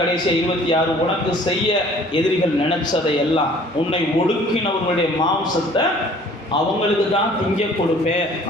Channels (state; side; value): normal; both; correlation 0.53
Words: 26, உனக்கு செய்ய எதிரிகள் நினைச்சதை எல்லாம் உன்னை ஒடுக்கினவர்களுடைய மாம்சத்தை அவங்களுக்கு தான் திங்க கொடுப்பேன்